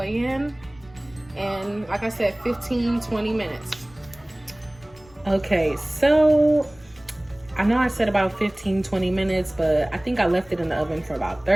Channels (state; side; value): noise; left; rumble, 26 dB below the sound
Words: in, and like I said, 15-20 minutes. Okay, so I know I said about 15-20 minutes, but I think I left it in the oven for about